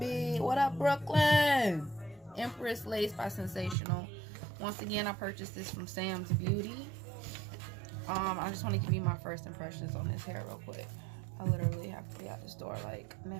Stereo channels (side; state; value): left; drops out; at 3.8 s